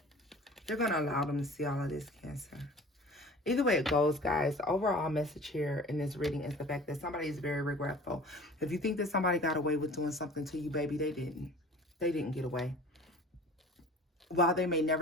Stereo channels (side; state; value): both; normal; correlation 0.43